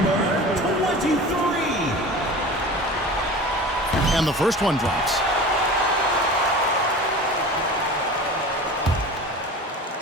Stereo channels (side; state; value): both; normal; correlation 0.36